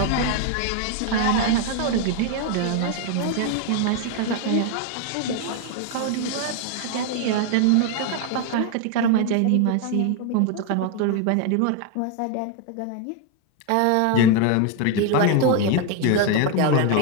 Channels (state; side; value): different; both; correlation 0.01